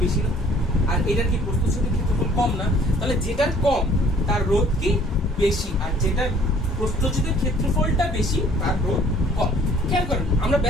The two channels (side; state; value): both; normal; correlation 0.56